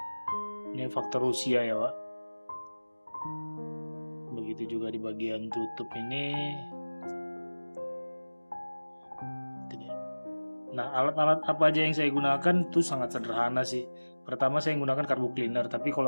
Ini faktor usia ya Wak. Begitu juga di bagian tutup ini. Nah, alat-alat apa aja yang saya gunakan itu sangat sederhana sih. Pertama saya gunakan carbo cleaner, tapi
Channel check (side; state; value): both; inverted; correlation -1.00